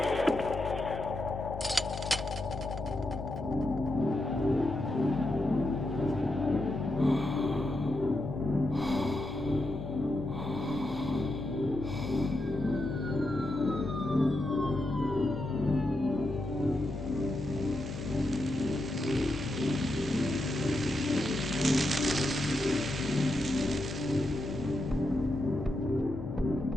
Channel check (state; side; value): noise; left; hum, 9 dB below the sound